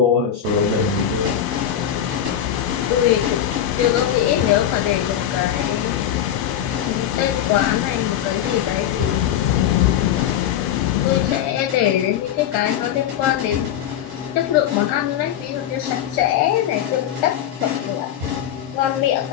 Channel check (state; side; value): quieter; right; 10.3 dB